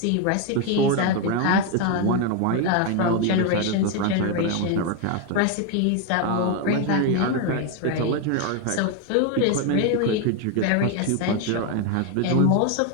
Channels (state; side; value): different; both; correlation 0.01